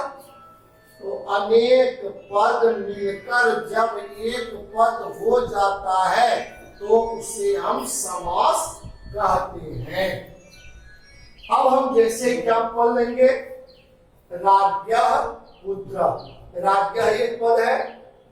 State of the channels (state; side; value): identical; both; correlation 1.00